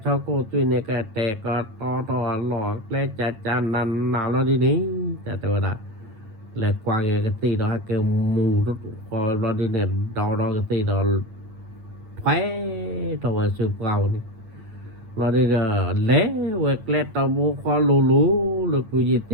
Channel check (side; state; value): left; late; 9.0 ms